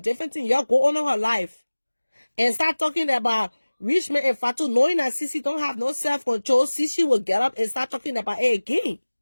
thing, y'all go on her life and start talking about Richman and Fatu, knowing that Sissy don't have no self-control. Sissy will get up and start talking about it again.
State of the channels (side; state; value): both; inverted; correlation -1.00